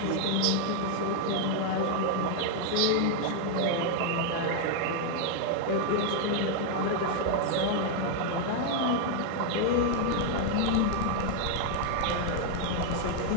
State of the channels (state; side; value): different; both; correlation 0.00